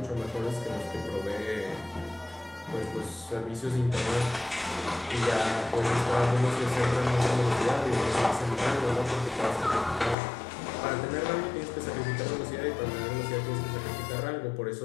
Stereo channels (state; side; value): drops out; right; at 10.2 s